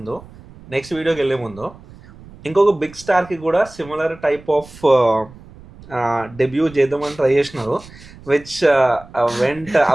నెక్స్ట్ వీడియోకి వెళ్ళే ముందు, ఇంకొక బిగ్ స్టార్కి కూడా సిమిలర్ టైప్ ఆఫ్ డెబ్యూ చేద్దామని ట్రై చేసినారు, which vent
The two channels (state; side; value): noise; right; rumble, 21 dB below the sound